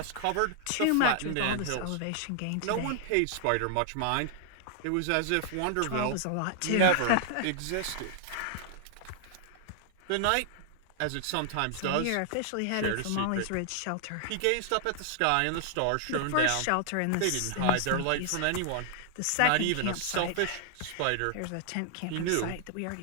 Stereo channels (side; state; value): both; different; correlation 0.00